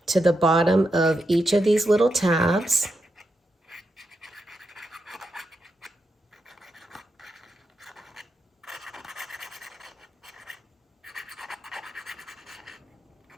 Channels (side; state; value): both; normal; correlation 0.85